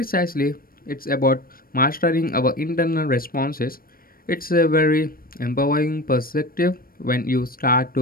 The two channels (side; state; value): right; late; 0.42 ms